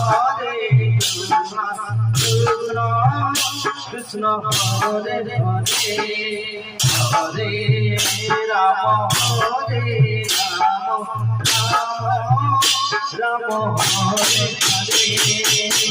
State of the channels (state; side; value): identical; both; correlation 1.00